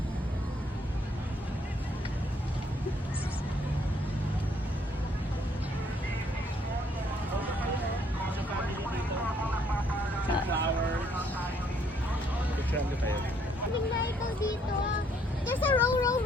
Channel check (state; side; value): normal; both; correlation 0.67